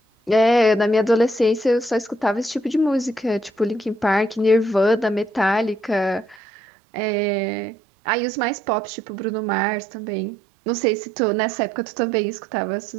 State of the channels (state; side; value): drops out; left; at 6.4 s